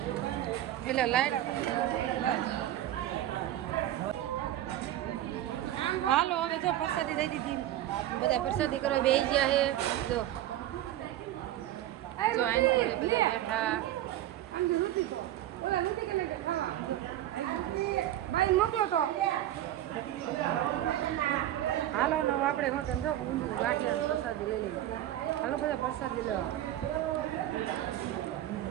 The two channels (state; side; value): quieter; left; 13.2 dB